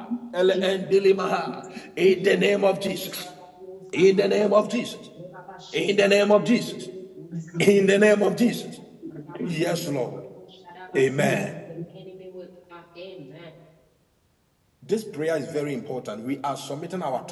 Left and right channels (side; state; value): both; identical; correlation 1.00